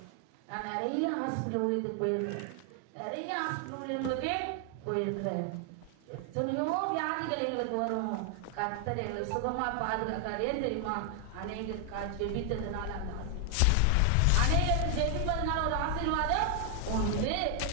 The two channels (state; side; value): different; both; correlation 0.00